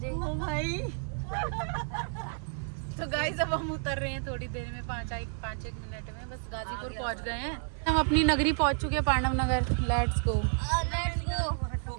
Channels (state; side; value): silent; left; 57 dB below the other